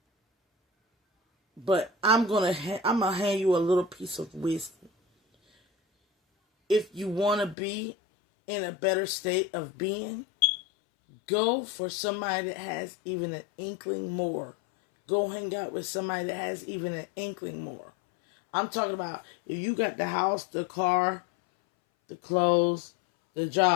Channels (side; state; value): right; drops out; at 7.6 s